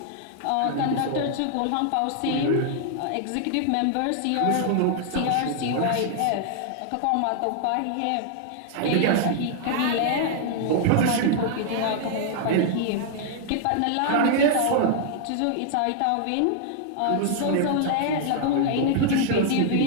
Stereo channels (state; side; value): different; both; correlation -0.01